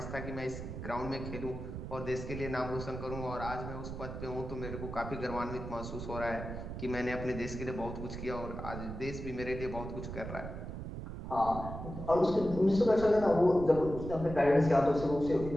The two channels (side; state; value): right; noise; rumble, 8 dB below the sound